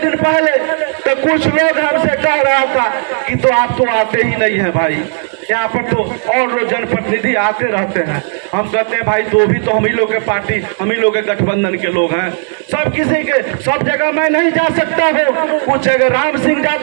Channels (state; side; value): silent; left; 61 dB below the other